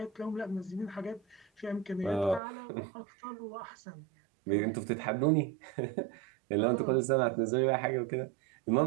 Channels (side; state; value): left; drops out; at 2.4 s